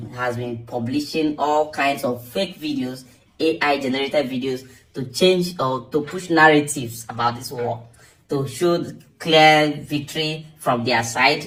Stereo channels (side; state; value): both; identical; correlation 1.00